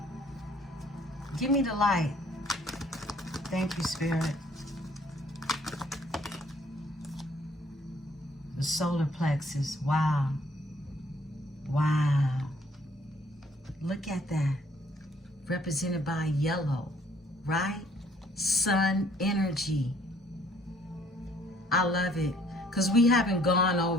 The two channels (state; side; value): normal; both; correlation 0.62